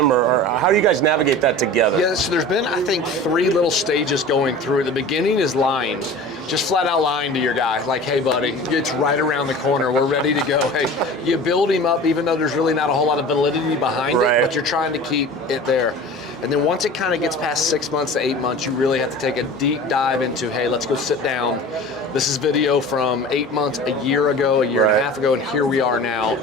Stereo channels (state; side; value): normal; both; correlation 0.38